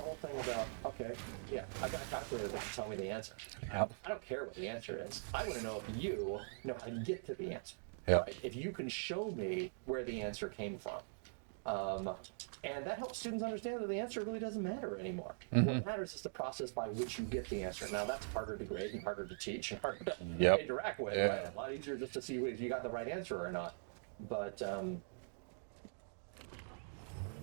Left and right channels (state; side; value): silent; left; digital silence